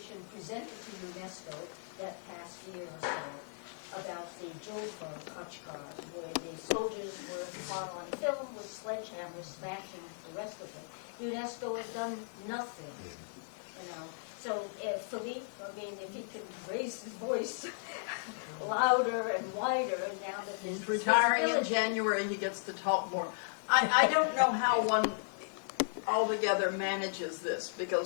presented to UNESCO that past year or so about the Julfa Khachkar, where the soldiers were caught on film with sledgehammers smashing the rest of them. UNESCO has done nothing, you know. So Philippe, I mean, if he could raise his voice louder and wider now that this He's retiring in January, he gets to talk more. I don't know how one altogether manages this,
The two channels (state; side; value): silent; right; digital silence